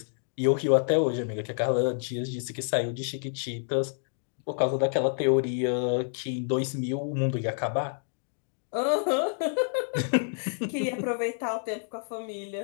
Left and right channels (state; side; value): silent; right; digital silence